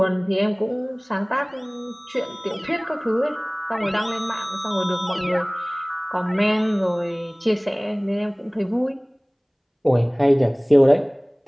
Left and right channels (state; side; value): identical; both; correlation 1.00